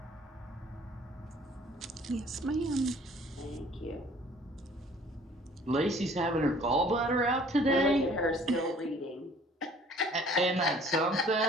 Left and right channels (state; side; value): normal; both; correlation 0.54